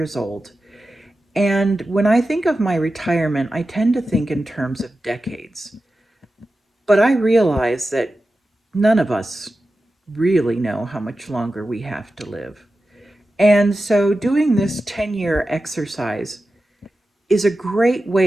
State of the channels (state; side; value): normal; both; correlation 0.93